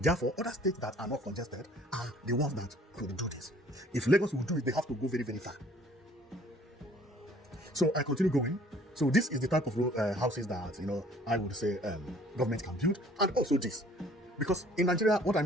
other states that are not congested are the ones that could do this. If Lagos will do it, they have to go very, very far. So I continue going. So this is the type of houses that I would say government can build, and also this, because in Nigeria, what I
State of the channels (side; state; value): both; normal; correlation 0.56